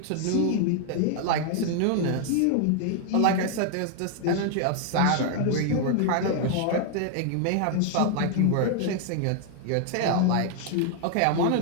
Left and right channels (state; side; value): different; both; correlation 0.00